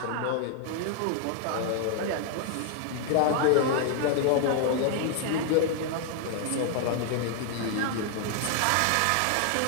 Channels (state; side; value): different; both; correlation 0.00